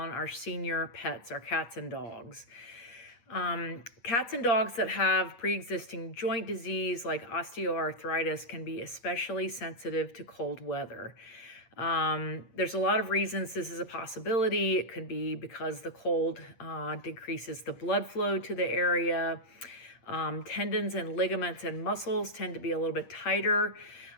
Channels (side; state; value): right; late; 8.8 ms